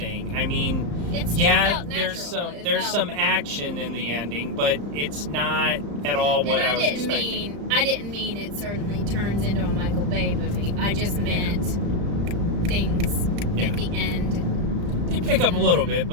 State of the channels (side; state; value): left; late; 35 ms